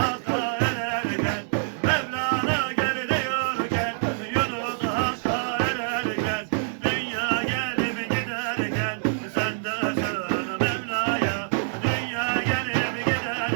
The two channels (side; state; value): left; silent; digital silence